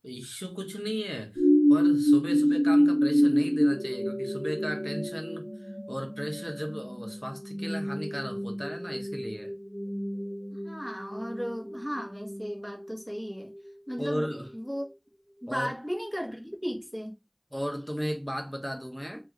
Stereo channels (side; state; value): both; identical; correlation 1.00